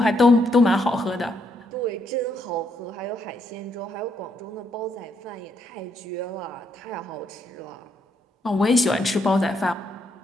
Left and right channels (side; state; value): both; normal; correlation 0.76